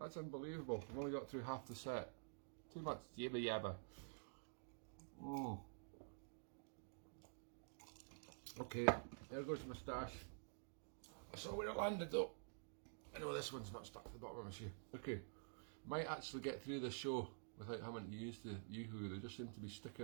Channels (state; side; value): silent; left; digital silence